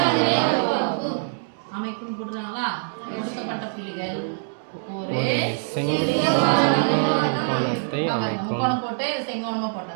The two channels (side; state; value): left; silent; digital silence